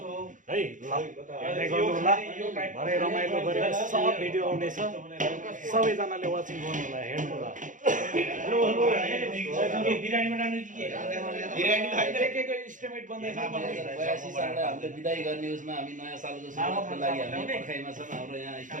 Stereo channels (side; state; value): left; late; 0.37 ms